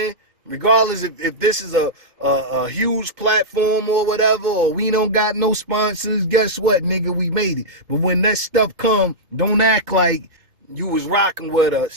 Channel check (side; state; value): left; late; 2.1 ms